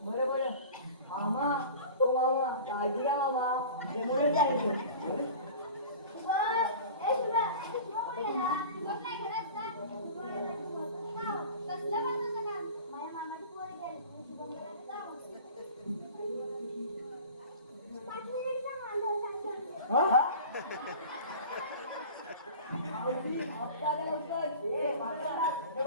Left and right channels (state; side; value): inverted; both; correlation -0.38